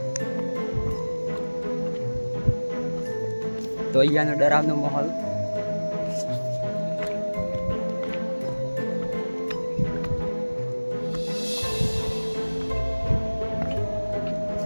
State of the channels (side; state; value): both; inverted; correlation -1.00